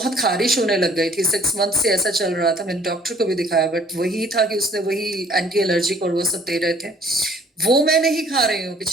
खारिश होने लग गई थी। 6 मंथ से ऐसा चल रहा था। मैंने डॉक्टर को भी दिखाया, बट वही था कि उसने वही एंटी एलर्जिक और वो सब दे रहे थे। वो मैं नहीं खा रही हूँ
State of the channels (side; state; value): both; normal; correlation 0.57